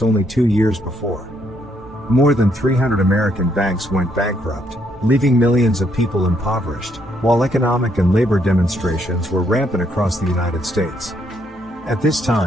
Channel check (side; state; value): both; normal; correlation 0.73